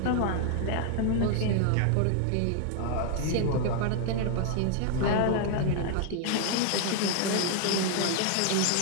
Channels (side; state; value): both; different; correlation 0.00